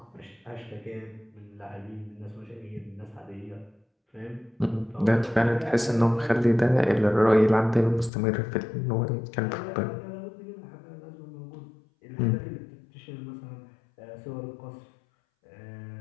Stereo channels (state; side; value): drops out; right; at 8.1 s